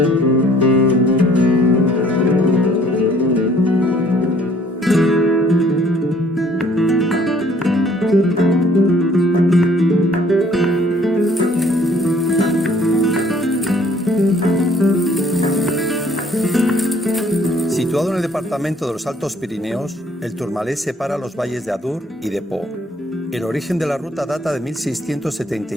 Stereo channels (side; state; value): both; normal; correlation 0.59